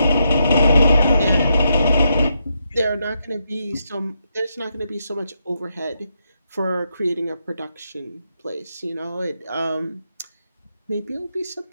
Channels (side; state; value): both; inverted; correlation -0.82